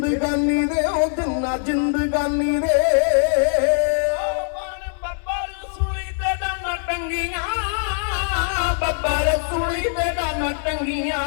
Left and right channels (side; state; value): right; silent; digital silence